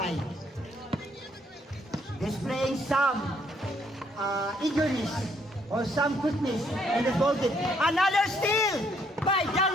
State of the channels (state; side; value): normal; both; correlation 0.69